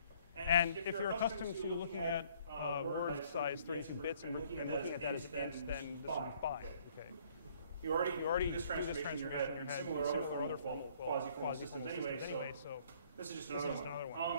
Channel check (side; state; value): both; inverted; correlation -0.61